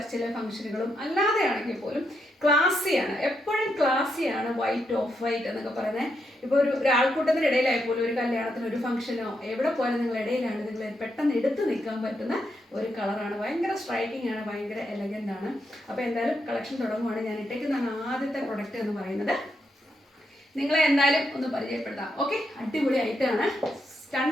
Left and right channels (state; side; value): normal; both; correlation 0.81